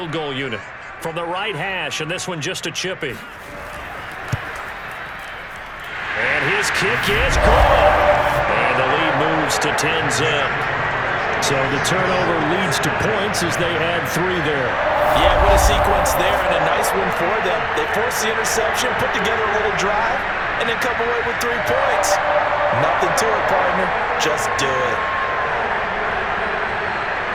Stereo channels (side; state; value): both; identical; correlation 1.00